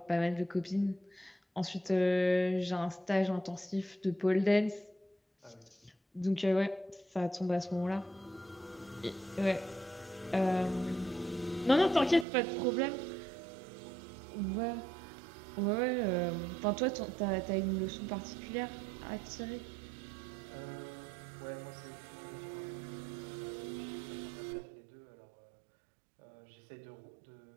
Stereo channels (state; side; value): drops out; left; at 12.2 s